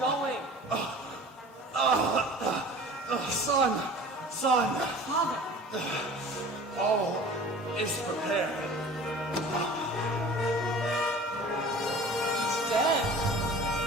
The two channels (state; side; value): normal; both; correlation 0.42